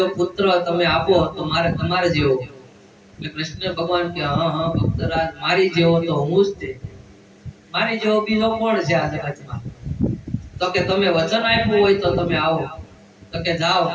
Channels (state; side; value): identical; both; correlation 1.00